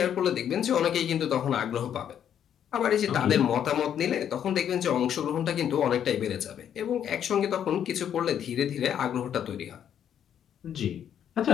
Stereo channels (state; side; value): quieter; right; 9.3 dB